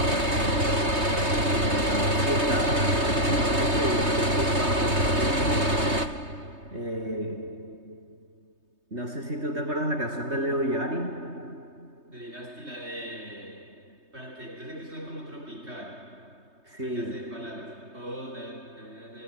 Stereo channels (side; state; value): left; late; 3.2 ms